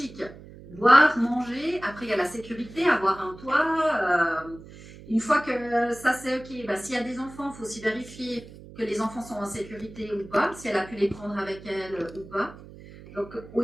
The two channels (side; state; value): right; noise; hum, 18 dB below the sound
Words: Boire, manger, après il y a la sécurité, avoir un toit. Une fois que ça c'est ok, bah, s'il y a des enfants, il faut aussi vérifier que les enfants sont en sécurité ou pas, si elle a pu les prendre avec elle ou pas. Donc au